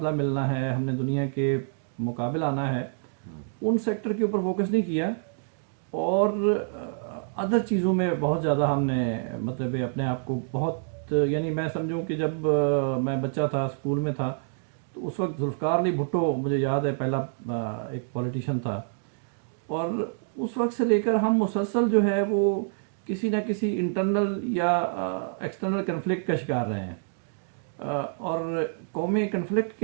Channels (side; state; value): left; silent; digital silence